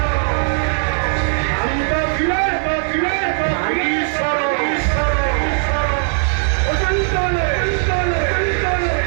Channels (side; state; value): left; silent; 67 dB below the other